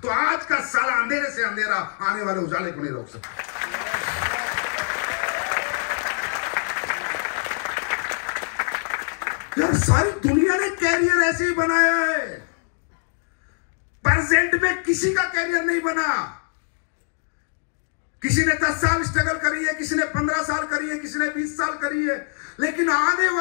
तो आज का साला अंधेरे से अंधेरा आने वाले उजाले को नहीं रोक सकता। यार सारी दुनिया ने कैरियर ऐसे ही बनाया है, प्रेजेंट में किसी का कैरियर नहीं बना। किसी ने 10 साल स्ट्रगल करी है, किसी ने 15 साल करी है, किसी ने 20 साल करी है, लेकिन आने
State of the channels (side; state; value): right; silent; 57 dB below the other